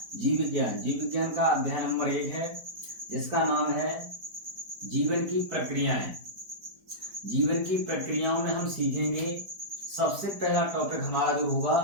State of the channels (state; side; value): late; left; 4.5 ms